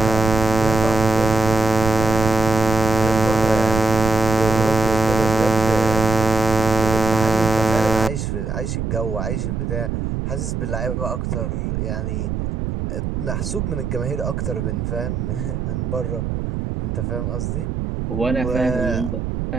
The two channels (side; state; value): right; noise; rumble, 3 dB below the sound